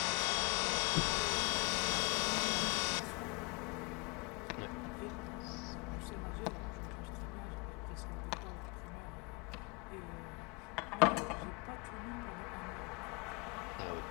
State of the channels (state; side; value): quieter; right; 30.1 dB